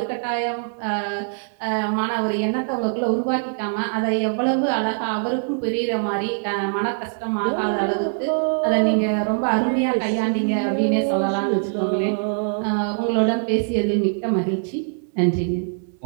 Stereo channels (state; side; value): silent; left; digital silence